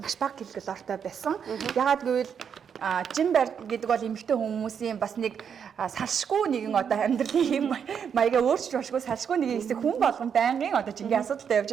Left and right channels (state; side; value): quieter; left; 7.4 dB